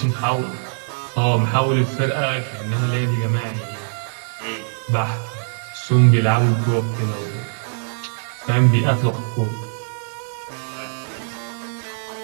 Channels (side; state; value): left; silent; digital silence